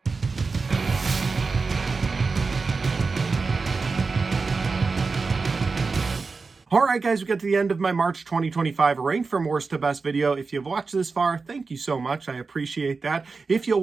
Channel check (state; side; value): quieter; left; 4.4 dB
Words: All right, guys, we got to the end of my March 2025 ranked from worst to best video. If you've watched this far, thank you so much. I appreciate that. If you'll